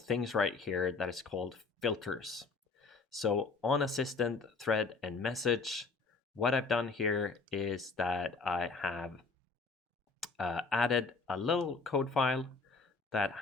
right here that is called filters. So on assistant, thread, and message, what I've done here is that I have added a little code file that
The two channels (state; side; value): quieter; right; 4.2 dB